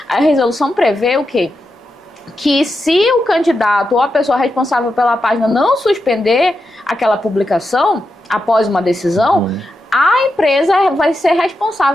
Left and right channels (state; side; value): normal; both; correlation 0.87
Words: a resolução prevê o quê? Que se o candidato ou a pessoa responsável pela página não suspender aquela publicação após uma decisão, a empresa vai ser